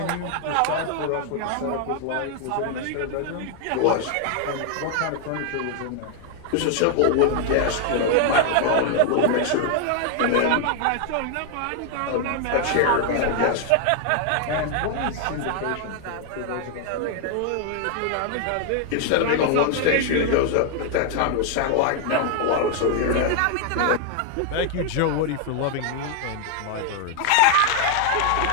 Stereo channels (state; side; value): different; both; correlation 0.00